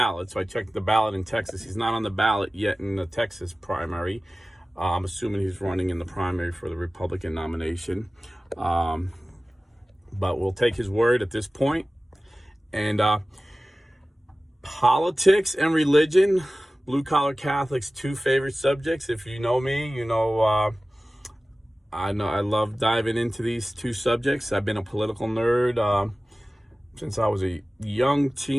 So I checked the ballot in Texas. He's not on the ballot yet in the Texas primary. I'm assuming he's running in the primary for the Republican nomination. But we'll take his word at this point. And politics and religion, blue-collar Catholics, two favorite subjects. If you know me, I love diving into these two subjects. I've been a political nerd since I was a young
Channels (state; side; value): normal; both; correlation 0.97